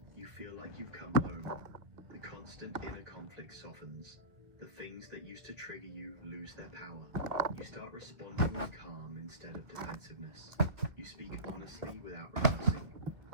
You feel like you've come home. The constant inner conflict softens. The things that used to trigger you lose their power. You start responding with calm instead of defensiveness. You speak honestly without rehearsing.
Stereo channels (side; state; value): left; late; 2.0 ms